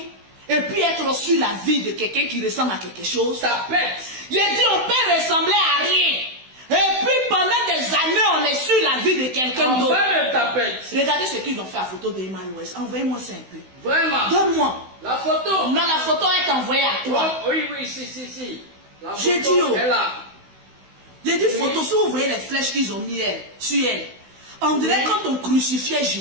Et puis être sur la vie de quelqu'un qui ressemble à quelque chose. Ça pète. J'ai dit on peut ressembler à rien. Et puis pendant des années on est sur la vie de quelqu'un d'autre. Regardez ce qu'ils ont fait à photo d'Emma Loès. Envoyez-moi ça un peu. Vraiment. Donne-moi. La photo. Non, la photo est envoyée à toi. Oh, oui, si. J'ai dit oh. J'ai dit oui. Photo, si vous voyez les flèches qu'ils ont mis sur elle. On dirait quand on crucifiait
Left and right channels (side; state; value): left; late; 16 ms